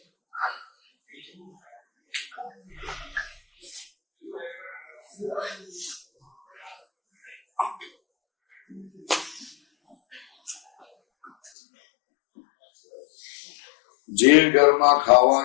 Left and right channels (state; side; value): drops out; right; at 11.5 s